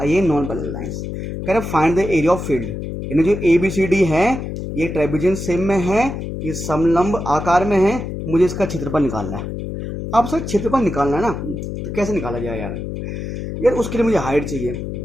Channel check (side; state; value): left; noise; hum, 6 dB below the sound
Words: ये नॉन पैरेलल लाइंस। कह रहे find the area of field, यानी जो ABCD है ये ट्रेपेजियम शेप में है, ये समलंब आकार में है, मुझे इसका क्षेत्रफल निकालना है। अब सर क्षेत्रफल निकालना है ना, तो कैसे निकाला जाए यार उसके लिए मुझे हाइट चाहिए।